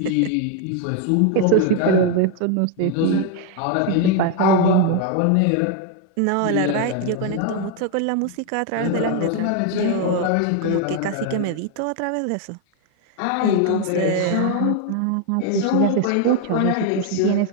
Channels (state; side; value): different; both; correlation 0.01